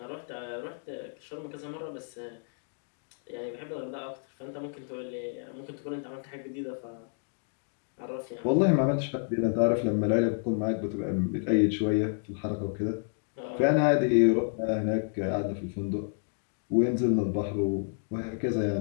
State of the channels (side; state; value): right; silent; digital silence